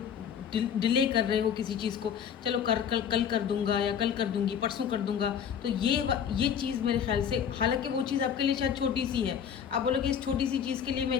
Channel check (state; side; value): quieter; right; 8.1 dB